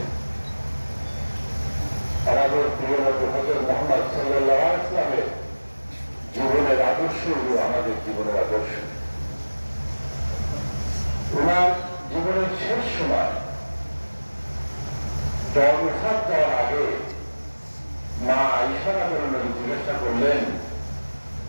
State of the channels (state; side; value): inverted; both; correlation -1.00